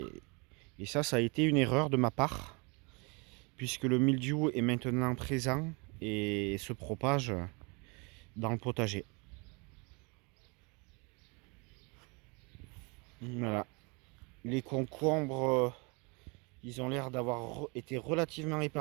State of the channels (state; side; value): quieter; left; 30.7 dB